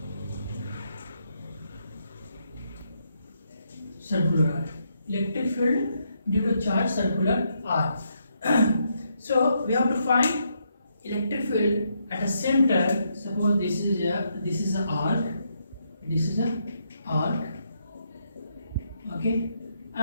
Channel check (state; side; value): inverted; both; correlation -0.77